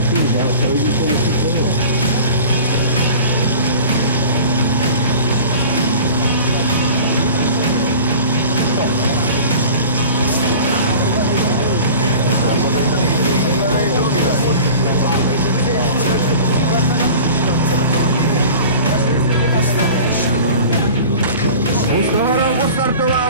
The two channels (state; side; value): inverted; both; correlation -0.40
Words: si vzal, to vidíte, jestli to bylo.